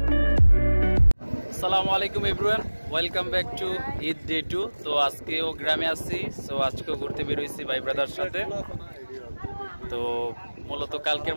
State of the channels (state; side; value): inverted; both; correlation -1.00